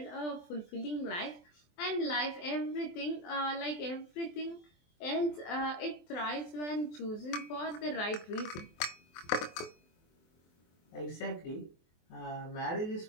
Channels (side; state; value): right; late; 24 ms